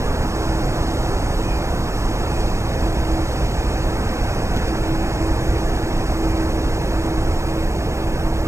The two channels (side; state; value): left; late; 0.14 ms